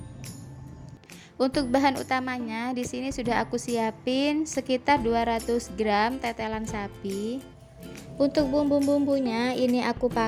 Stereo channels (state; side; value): identical; both; correlation 1.00